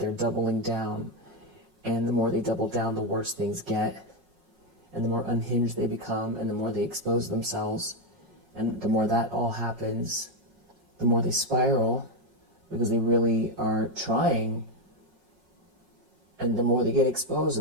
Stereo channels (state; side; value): late; left; 5.5 ms